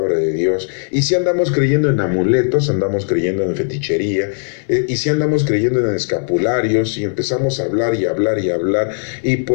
de Dios, y si andamos creyendo en amuletos, andamos creyendo en fetichería, y si andamos creyendo en escapularios, y empezamos a hablar y hablar y hablar, y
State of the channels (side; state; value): right; silent; 65 dB below the other